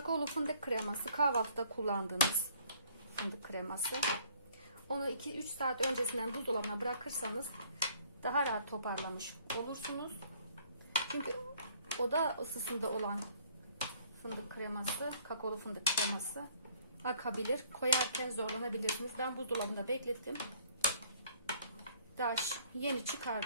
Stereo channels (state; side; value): inverted; both; correlation -0.60